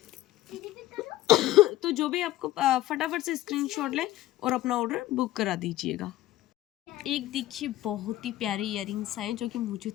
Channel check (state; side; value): quieter; right; 15.3 dB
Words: तो जो भी आपको फटाफट से स्क्रीनशॉट ले और अपना ऑर्डर बुक करा दीजिएगा। एक देखिए बहुत ही प्यारे इयररिंग्स आए जो कि मुझे